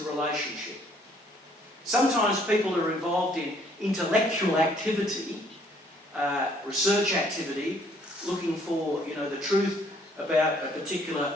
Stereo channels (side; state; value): both; normal; correlation 0.63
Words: relationship. Sometimes people are involved in intellectual activity, research activity, looking for, the truth about a particular